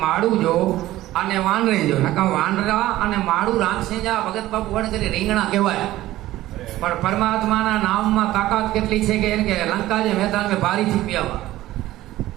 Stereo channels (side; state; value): left; quieter; 15.7 dB